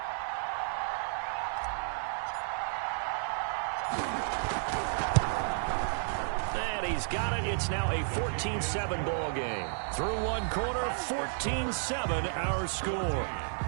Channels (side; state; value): left; silent; 56 dB below the other